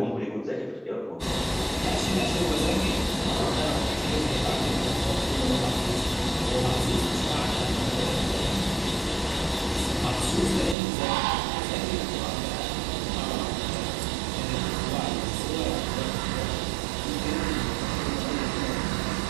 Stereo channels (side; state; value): left; drops out; at 10.8 s